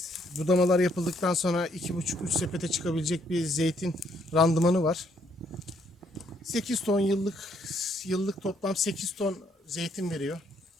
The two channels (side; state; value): both; normal; correlation 0.70